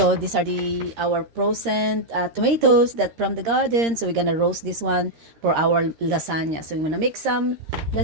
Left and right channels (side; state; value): left; late; 13 ms